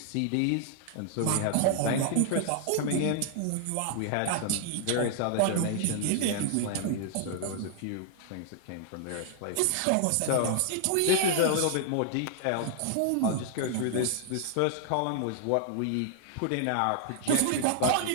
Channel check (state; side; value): different; both; correlation 0.00